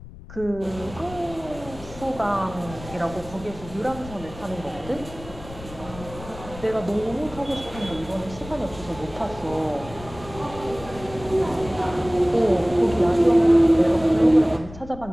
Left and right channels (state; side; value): noise; left; rumble, 15 dB below the sound